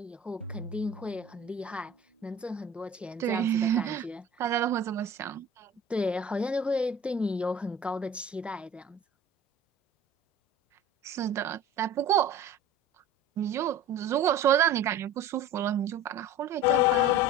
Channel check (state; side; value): normal; both; correlation 0.39